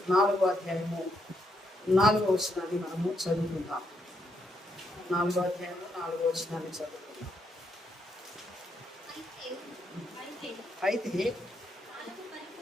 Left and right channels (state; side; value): normal; both; correlation 0.77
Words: 4వ అధ్యాయము 4వ వచనాన్ని మనము చదువుకుందాం. 4వ అధ్యాయము 4వ వచనాన్ని చదువుకుందాం. అయితే